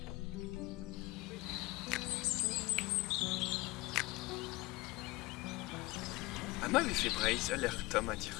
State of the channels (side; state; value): right; quieter; 21.5 dB